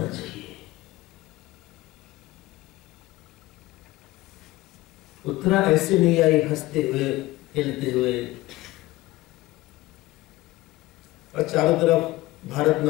चाहिए। उत्तरा ऐसे नहीं आई हंसते हुए, खेलते हुए, और चारों तरफ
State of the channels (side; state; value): right; quieter; 18.4 dB